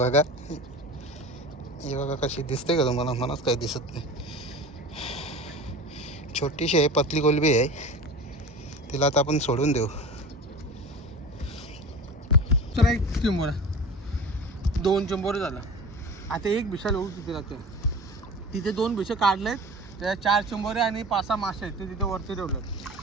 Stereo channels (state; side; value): normal; both; correlation 0.36